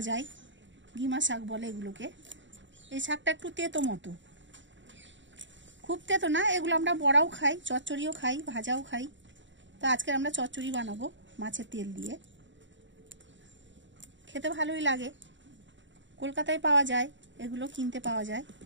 যায়, গিমা শাক বলে এগুলোকে। এই শাকটা একটু তেতো মতো, খুব তেতো না। এগুলো আমরা বড়াও খাই, চচ্চড়িও খাই, ভাজাও খাই। তো আজকে আমরা চচ্চড়ি বানাবো মাছের তেল দিয়ে, খেতে ভালোই লাগে। কলকাতায় পাওয়া যায়, এগুলো কিনতে পাওয়া যায়।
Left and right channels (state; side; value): late; left; 0.54 ms